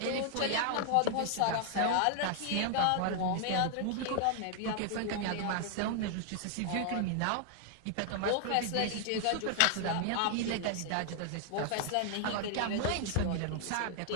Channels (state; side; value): different; both; correlation 0.00